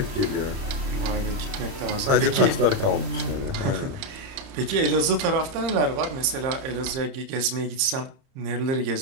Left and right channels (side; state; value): left; late; 30 ms